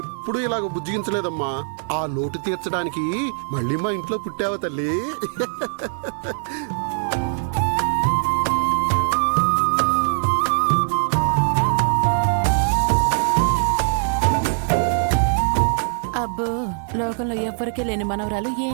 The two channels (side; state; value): left; silent; 64 dB below the other